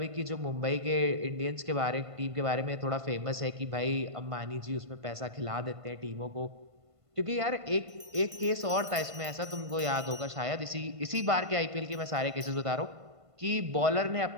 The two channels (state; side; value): late; left; 1.5 ms